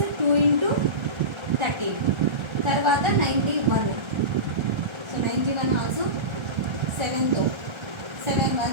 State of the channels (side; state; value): left; late; 1.3 ms